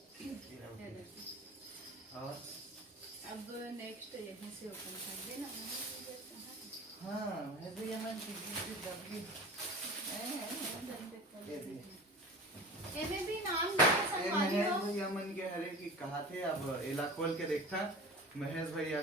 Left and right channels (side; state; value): both; normal; correlation 0.36